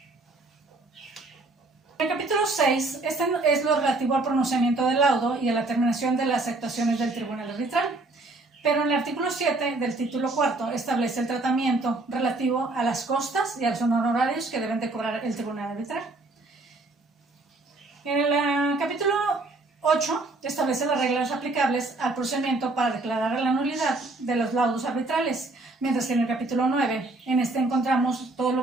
En el capítulo 6, este es lo relativo al pronunciamiento del laudo y a la terminación de las actuaciones del tribunal arbitral. Pero en el artículo 7 del título cuarto establece el tratamiento relativo a las costas y a los honorarios que deben de cobrar el tribunal arbitral. En el capítulo 8 establece las reglas aplicables al procedimiento para declarar la nulidad de los laudos arbitrales, mientras que en el capítulo 9, en este encontramos todo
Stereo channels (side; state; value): left; quieter; 3.1 dB